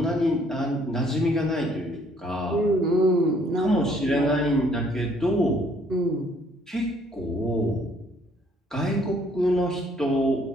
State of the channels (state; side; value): normal; both; correlation 0.63